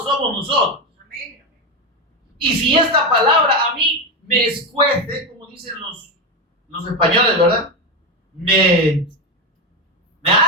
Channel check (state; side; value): normal; both; correlation 0.13